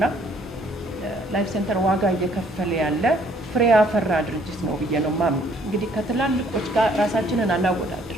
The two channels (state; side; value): normal; both; correlation 0.63